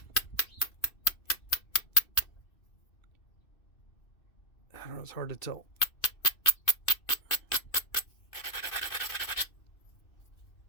don't know, it's hard to tell.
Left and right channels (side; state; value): right; late; 2.6 ms